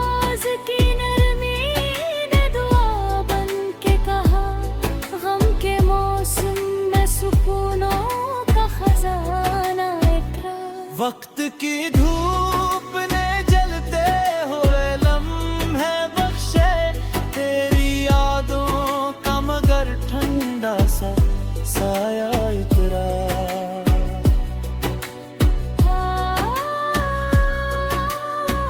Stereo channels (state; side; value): identical; both; correlation 1.00